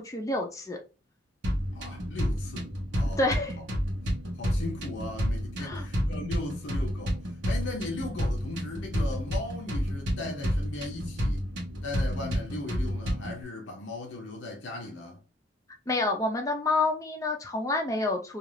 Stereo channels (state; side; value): normal; both; correlation 0.71